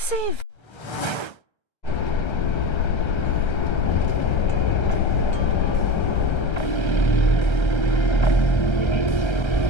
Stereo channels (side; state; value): right; late; 1.3 ms